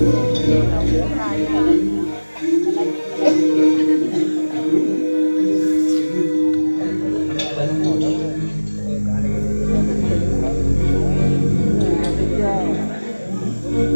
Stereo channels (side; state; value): both; inverted; correlation -1.00